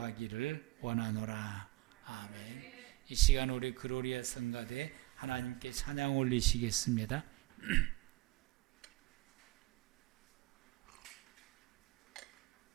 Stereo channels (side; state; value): left; quieter; 20.9 dB